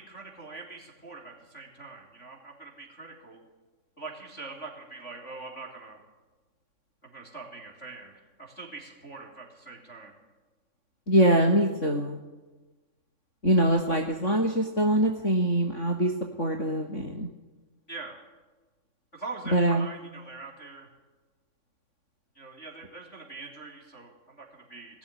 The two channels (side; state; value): right; late; 3.6 ms